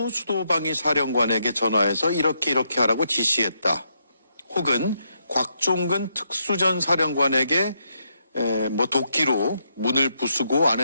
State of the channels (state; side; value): inverted; both; correlation -0.79